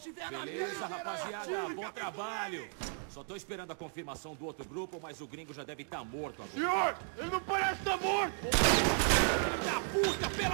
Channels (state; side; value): silent; left; 54 dB below the other